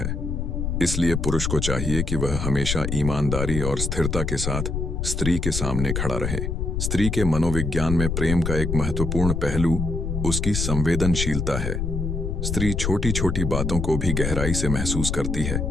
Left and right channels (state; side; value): noise; left; rumble, 1 dB below the sound